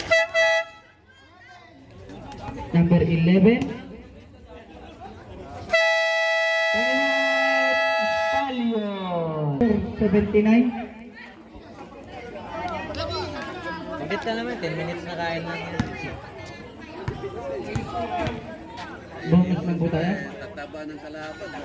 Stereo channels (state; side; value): identical; both; correlation 1.00